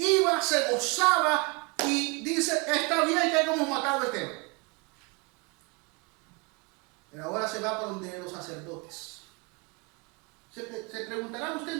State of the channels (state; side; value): quieter; left; 29.3 dB